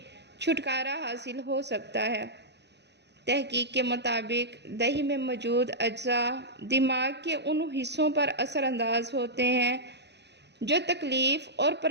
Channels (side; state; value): left; late; 0.50 ms